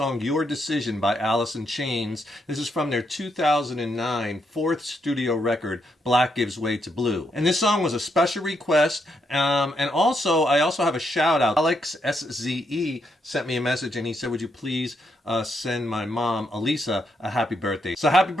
Your Decision by Alice in Chains. This is from their 2009 fourth studio record, Black Gives Way to Blue. And this song was a special request, and I also have a shout out. Alex SZE sent me a message and he said, would you please send my mom, Elisa, a happy birthday. So happy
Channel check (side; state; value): both; normal; correlation 0.78